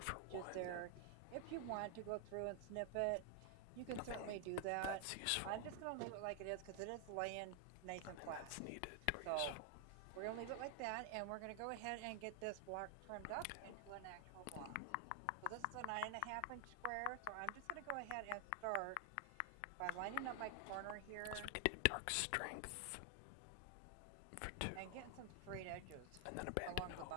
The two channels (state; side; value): different; both; correlation 0.00